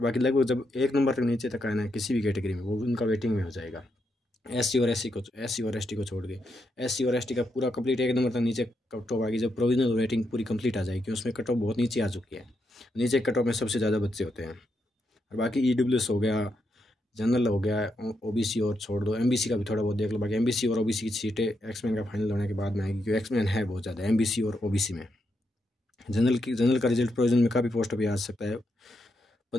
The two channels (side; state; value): both; normal; correlation 0.81